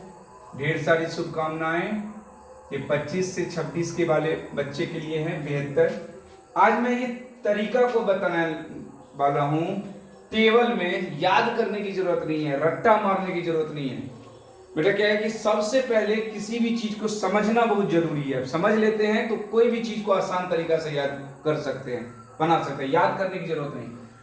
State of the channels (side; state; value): both; identical; correlation 1.00